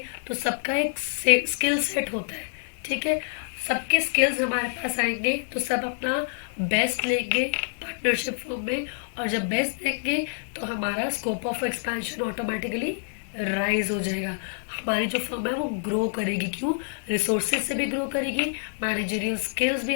तो सबका एक स्किल सेट होता है, ठीक है, सबके स्किल्स हमारे पास आएंगे तो सब अपना बेस्ट लेंगे पार्टनरशिप फॉर्म में, और जब बेस्ट देंगे तो हमारा scope of expansion automatically rise हो जाएगा। हमारी जो फर्म है वो ग्रो करेगी, क्यों, रिसोर्सेज से भी ग्रो करेगी, मैनेजरियल स्किल्स भी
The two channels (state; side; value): silent; right; digital silence